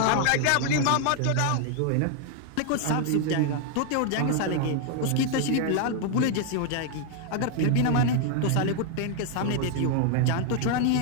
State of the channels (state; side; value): different; both; correlation 0.00